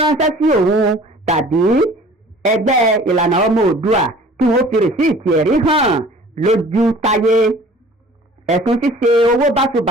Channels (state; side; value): normal; both; correlation 0.49